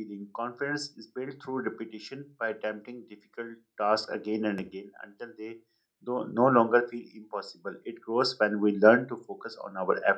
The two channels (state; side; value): identical; both; correlation 1.00